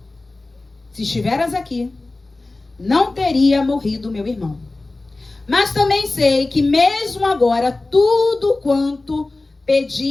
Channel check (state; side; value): quieter; right; 3.1 dB